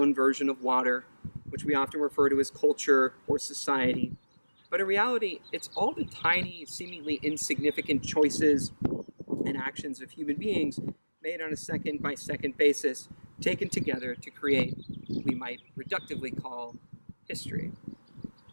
version of water, which we often refer to as culture or society. But in reality, it's all the tiny, seemingly insignificant choices interactions of human beings made on a second-by-second basis, taken together to create what we might reductively call history.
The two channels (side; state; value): both; inverted; correlation -1.00